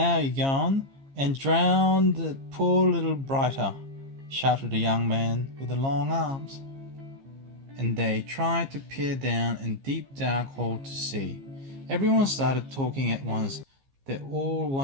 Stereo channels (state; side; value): late; left; 15 ms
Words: you're gone, and drown the poor little brighter," shouted the young man with the long arms. And they tried to peer down a deep dark hole to see. Everyone started talking at once. They all